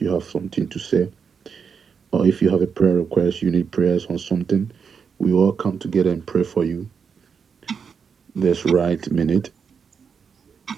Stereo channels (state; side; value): quieter; left; 6.3 dB